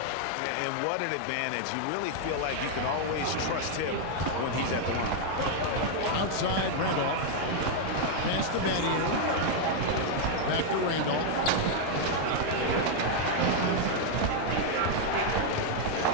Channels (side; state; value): both; different; correlation 0.00